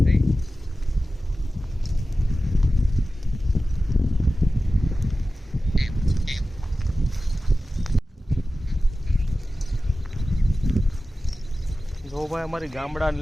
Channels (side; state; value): both; normal; correlation 0.95